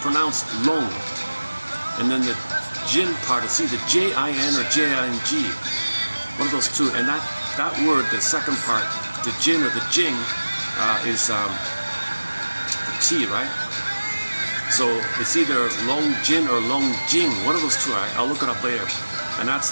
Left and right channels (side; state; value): both; inverted; correlation -1.00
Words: pronounced long. And then the jin part, it's either J-I-N or J-I-N-G. One of those two. And that word, the second part, the jin or the jing, is tea, right? So it's either Long Jin or Long Jing, one of those two. I'll look it up later. And that's